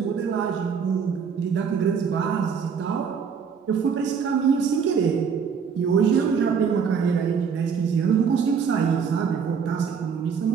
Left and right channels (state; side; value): quieter; left; 6.5 dB